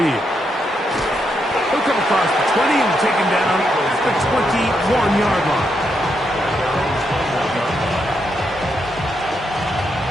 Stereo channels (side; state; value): both; normal; correlation 0.81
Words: He'll come across the 20 and take him down at the 21-yard line.